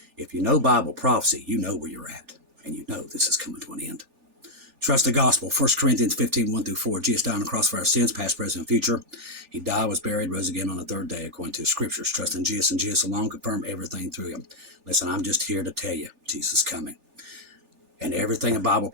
If you know Bible prophecy, you know where you're at, and you know this is coming to an end. Trust the gospel. 1 Corinthians 15:1-4. Jesus died on the cross for our sins, past, present, and future. He died, was buried, rose again on the third day, according to the scriptures. Trust in Jesus and Jesus alone. Confirm everything through him. Listen, I'm just here to tell you, Jesus is coming. And everything in Bible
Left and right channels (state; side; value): late; left; 3.4 ms